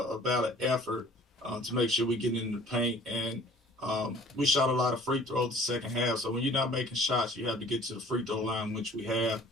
valid effort to make sure we get in the paint, and we shot a lot of free throws the second half. So when you're not making shots, you have to get to the free throw line, which we have.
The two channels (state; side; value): normal; both; correlation 0.50